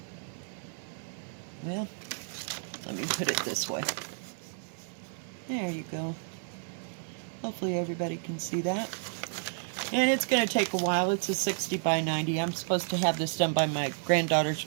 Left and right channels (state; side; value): silent; left; digital silence